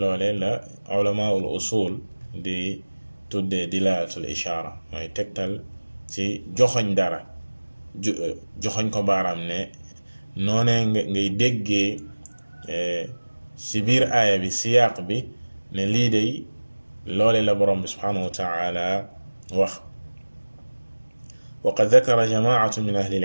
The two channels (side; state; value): both; inverted; correlation -1.00